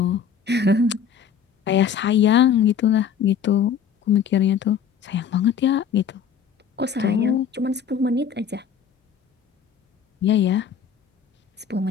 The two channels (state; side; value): quieter; right; 7.3 dB